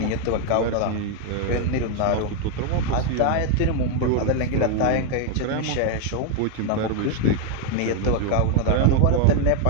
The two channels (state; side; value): different; both; correlation 0.00